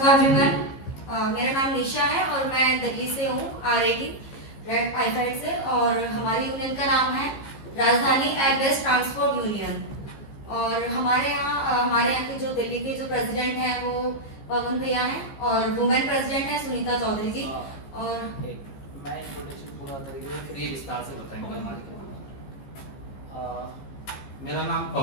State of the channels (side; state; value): right; late; 15 ms